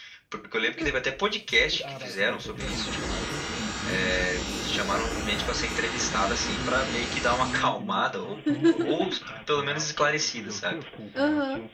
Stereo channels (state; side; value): identical; both; correlation 1.00